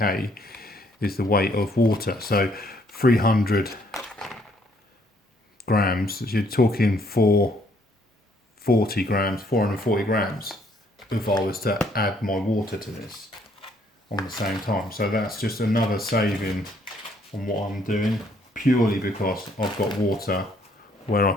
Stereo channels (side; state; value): both; normal; correlation 0.66